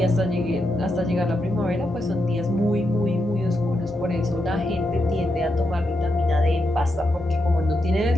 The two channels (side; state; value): both; normal; correlation 0.84